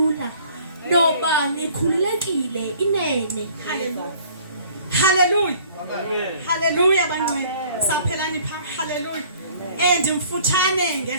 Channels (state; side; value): inverted; both; correlation -0.54